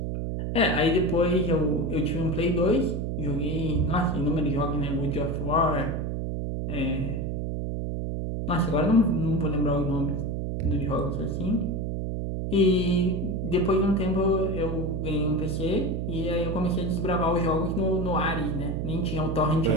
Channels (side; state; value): right; noise; hum, 2 dB below the sound